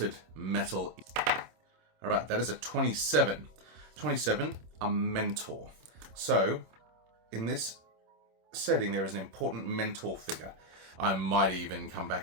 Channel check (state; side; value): late; left; 26 ms